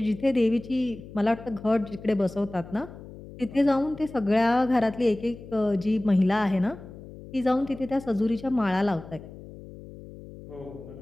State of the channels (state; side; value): noise; left; hum, 16 dB below the sound